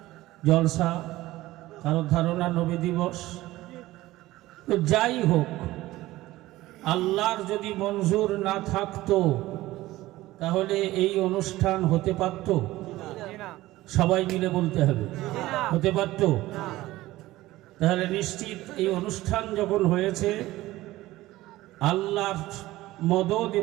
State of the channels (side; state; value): left; quieter; 17.2 dB